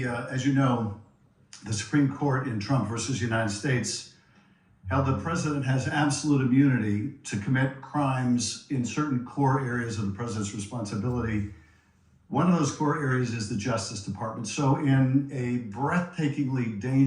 as you know, the Supreme Court in Trump versus United States held the president has absolute immunity to commit crimes in certain core areas of the president's responsibility. One of those core areas is the Justice Department. So in a breathtakingly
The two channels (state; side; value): identical; both; correlation 1.00